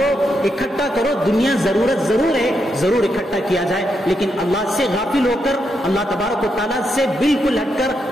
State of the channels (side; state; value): both; normal; correlation 0.82